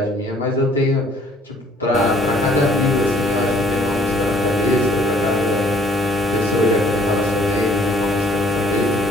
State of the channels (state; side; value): normal; both; correlation 0.59